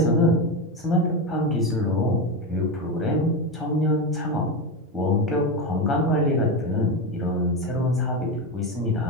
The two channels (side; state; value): both; normal; correlation 0.15